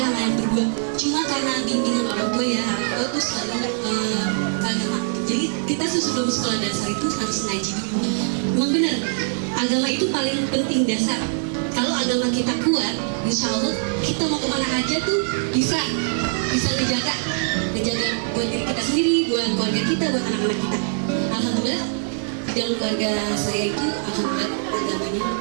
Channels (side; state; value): left; silent; 64 dB below the other